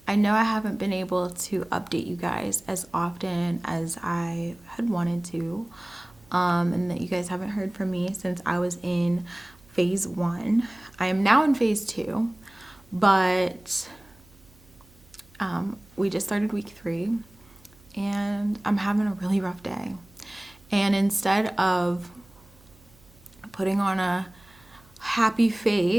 I know I haven't been able to update you guys as often as I had wanted to, and that you guys haven't heard from me since I was in phase 1. I am now in phase 2, but we just started week 3, and I'm having a really rough day. And instead of putting on a happy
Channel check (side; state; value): right; noise; hum, 27 dB below the sound